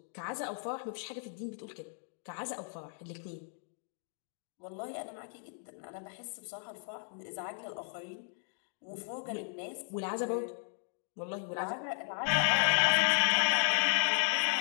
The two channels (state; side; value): silent; right; 54 dB below the other